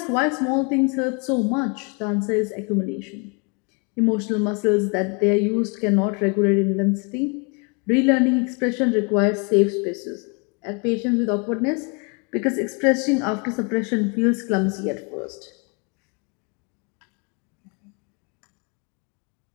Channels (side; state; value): right; quieter; 33.8 dB